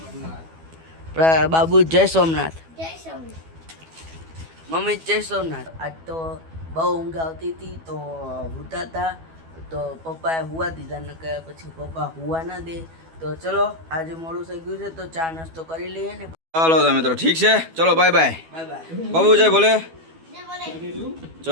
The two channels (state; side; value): late; left; 12 ms